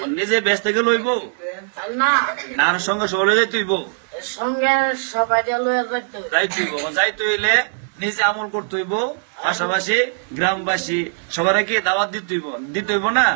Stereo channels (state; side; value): silent; left; digital silence